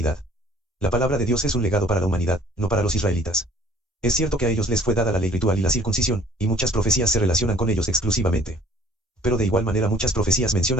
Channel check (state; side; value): normal; both; correlation 0.54